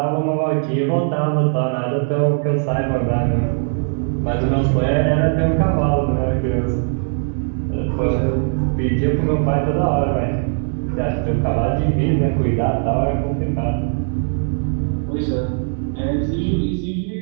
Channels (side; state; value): left; silent; 56 dB below the other